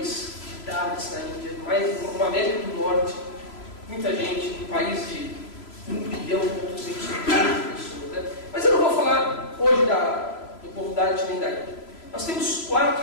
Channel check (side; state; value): right; late; 3.0 ms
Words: de Dalits na Índia, mais uma América do Norte, muita gente, um país de 1 bilhão e 200 milhões de pessoas. Né? Mas eu não vou falar hoje do povo Dalit nem da Índia. Nós temos